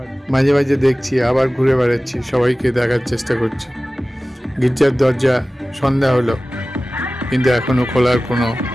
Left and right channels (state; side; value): normal; both; correlation 0.97